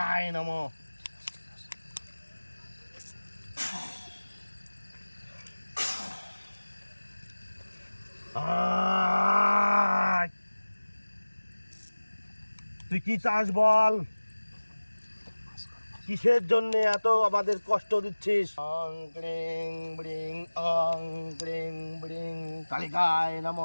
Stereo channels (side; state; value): both; inverted; correlation -1.00